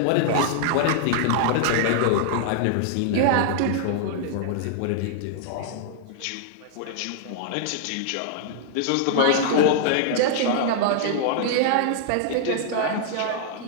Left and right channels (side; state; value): both; different; correlation -0.01